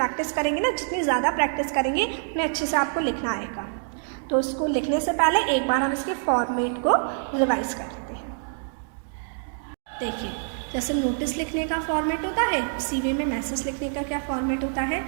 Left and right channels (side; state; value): left; silent; 61 dB below the other